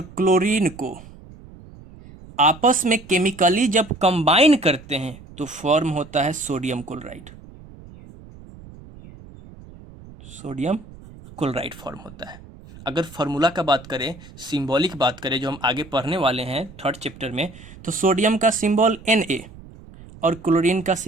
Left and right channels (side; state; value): right; noise; rumble, 19 dB below the sound